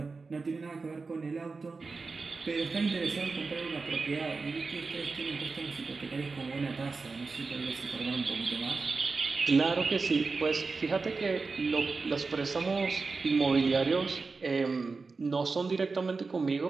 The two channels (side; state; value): left; quieter; 4.2 dB